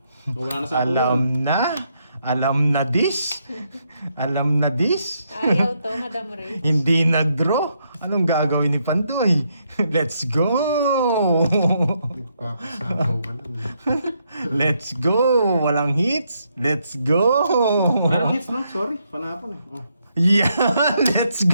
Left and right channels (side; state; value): both; inverted; correlation -0.77